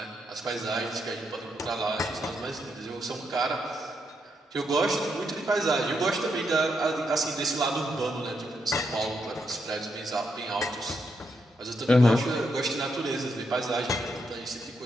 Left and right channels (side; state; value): both; normal; correlation 0.80